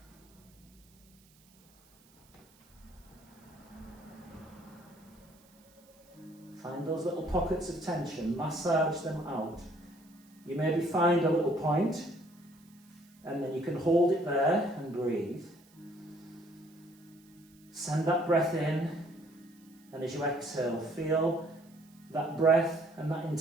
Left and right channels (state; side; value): noise; right; hiss, 29 dB below the sound